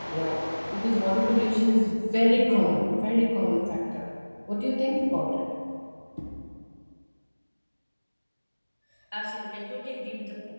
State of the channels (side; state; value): both; inverted; correlation -1.00